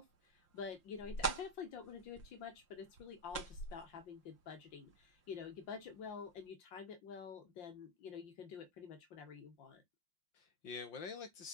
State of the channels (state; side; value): late; right; 5.7 ms